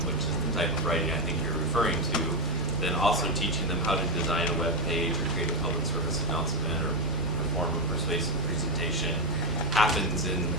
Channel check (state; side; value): normal; both; correlation 0.09